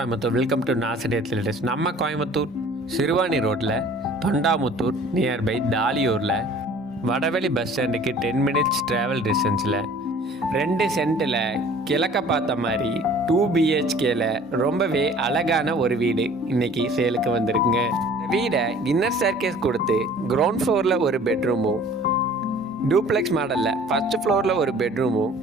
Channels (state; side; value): normal; both; correlation 0.50